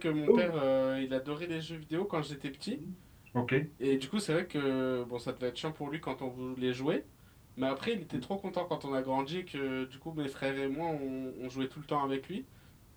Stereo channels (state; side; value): identical; both; correlation 1.00